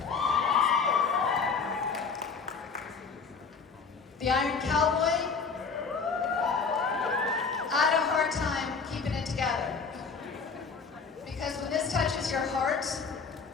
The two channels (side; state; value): right; quieter; 5.2 dB